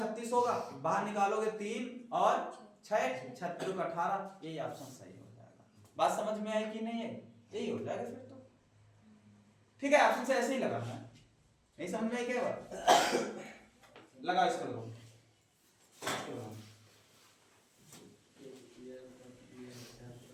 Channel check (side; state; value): both; identical; correlation 1.00